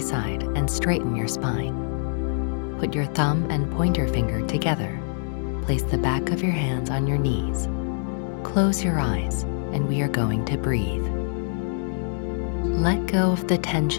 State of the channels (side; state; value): right; silent; digital silence